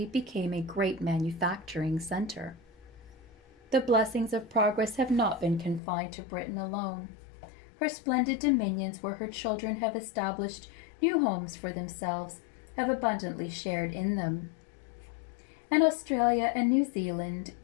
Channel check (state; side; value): drops out; right; at 5.8 s